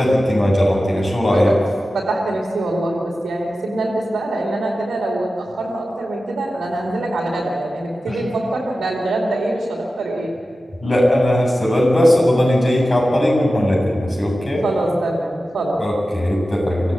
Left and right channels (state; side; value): normal; both; correlation 0.94